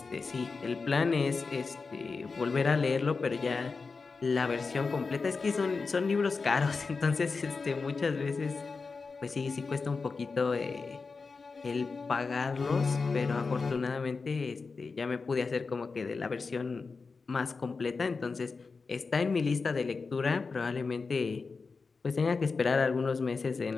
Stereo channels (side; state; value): right; quieter; 4.5 dB